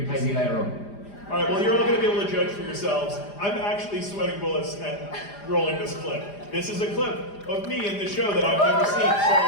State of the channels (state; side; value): late; right; 4.9 ms